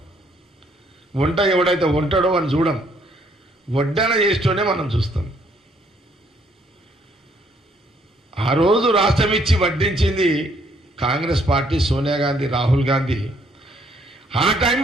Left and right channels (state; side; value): normal; both; correlation 0.67